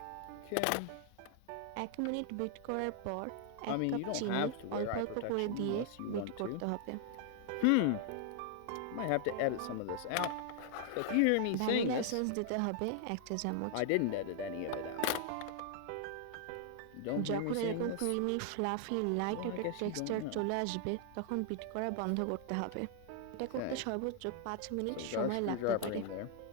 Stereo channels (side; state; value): both; different; correlation 0.00